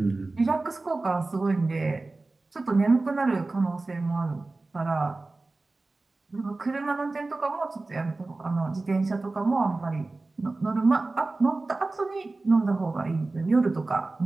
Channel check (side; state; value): left; quieter; 3.3 dB